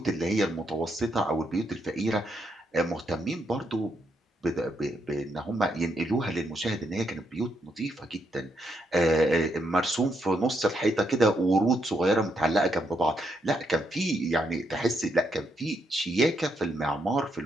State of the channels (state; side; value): normal; both; correlation 0.78